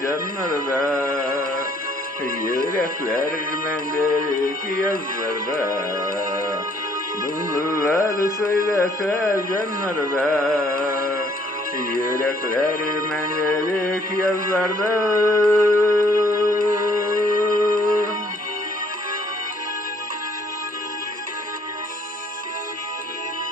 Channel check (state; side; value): normal; both; correlation 0.63